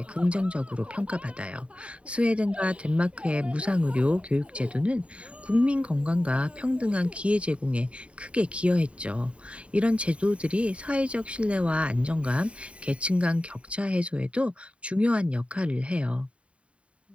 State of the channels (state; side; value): late; left; 0.062 ms